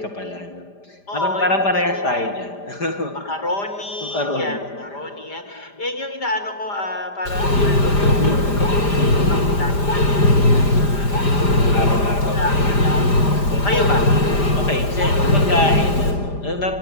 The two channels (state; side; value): late; right; 5.0 ms